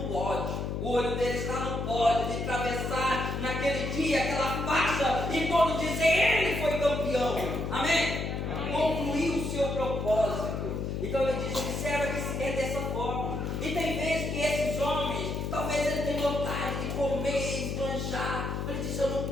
pódio. O olho dele está no pódio de atravessar naquele dia aquela faixa e todos dizer: ele foi campeão. Amém? Concluiu o seu propósito. Então ele diz: observa que é dessa forma. E tem vezes que esses homens, talvez ele tenha vontade de comer, esbanjar. Ele diz: eu não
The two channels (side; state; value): left; noise; hum, 2 dB below the sound